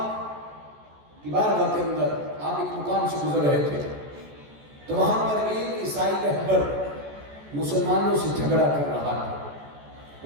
کی بارگاہ کے اندر آپ ایک مقام سے گزر رہے تھے تو وہاں پر ایک عیسائی رہبر مسلمانوں سے جھگڑا کر رہا تھا،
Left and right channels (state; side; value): late; left; 14 ms